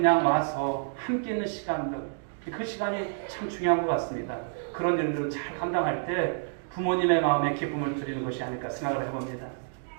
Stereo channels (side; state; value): left; silent; digital silence